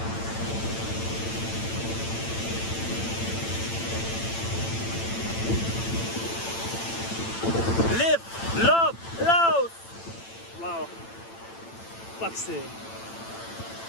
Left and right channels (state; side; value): late; right; 8.9 ms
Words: Live, love, Laos! Wow. Fuck's sake.